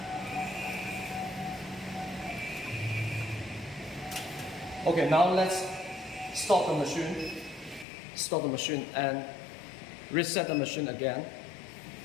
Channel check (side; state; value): right; drops out; at 7.9 s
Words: Okay, now let's stop the machine and reset the machine again.